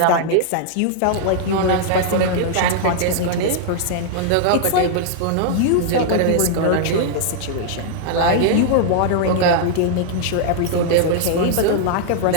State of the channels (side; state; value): both; different; correlation -0.01